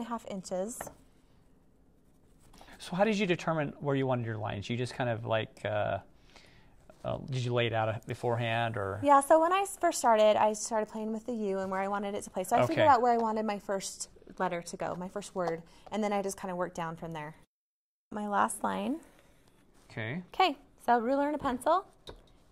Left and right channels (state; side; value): identical; both; correlation 1.00